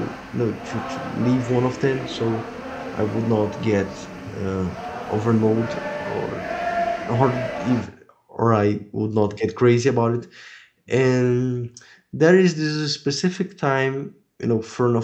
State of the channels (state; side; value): identical; both; correlation 1.00